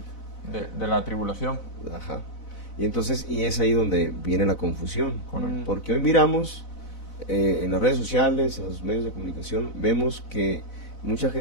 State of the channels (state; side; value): late; right; 4.0 ms